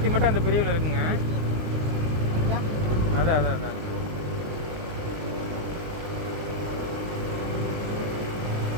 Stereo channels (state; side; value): late; left; 19 ms